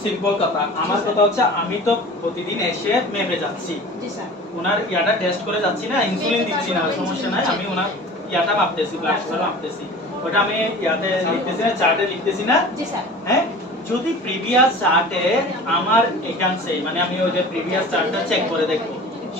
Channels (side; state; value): both; normal; correlation 0.39